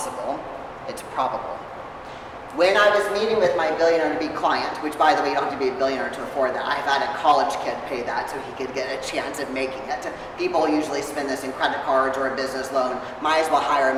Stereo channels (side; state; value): both; identical; correlation 1.00